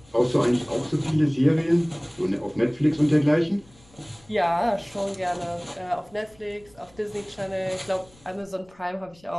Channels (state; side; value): noise; left; rumble, 28 dB below the sound